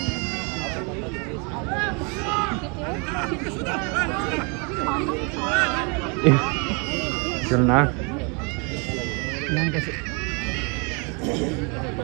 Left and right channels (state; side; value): quieter; left; 33.1 dB